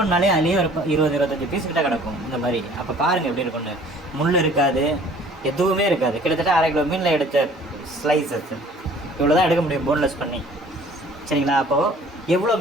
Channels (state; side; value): normal; both; correlation 0.52